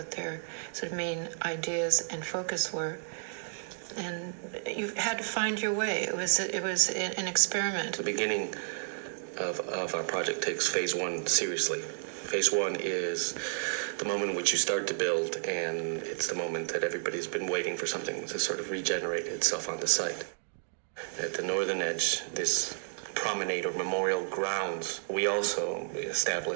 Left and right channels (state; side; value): silent; left; digital silence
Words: their sort of main ideas and focus were. And you had to find your way. It was an experiment. The beginning of our project takes phase 1 seriously. Phase 1 is the moment in which you start to build, and it's the moment that everybody's been waiting for something to sort of regenerate itself on the site. At the northern edge, this promenade or memorial grounds, we also